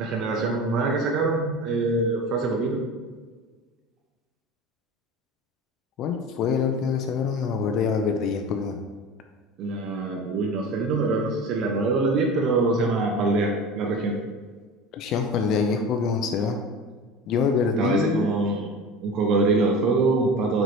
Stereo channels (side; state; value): both; normal; correlation 0.33